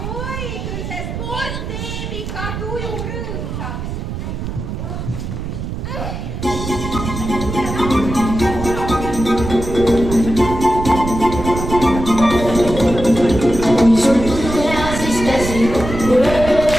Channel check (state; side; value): noise; right; rumble, 6 dB below the sound